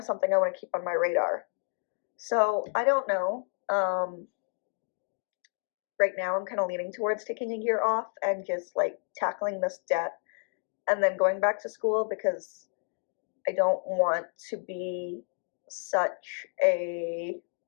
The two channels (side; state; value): right; silent; digital silence